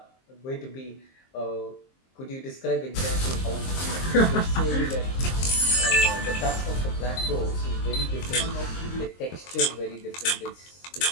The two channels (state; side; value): late; right; 23 ms